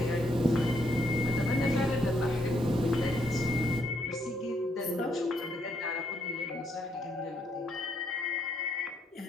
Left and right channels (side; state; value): both; normal; correlation 0.74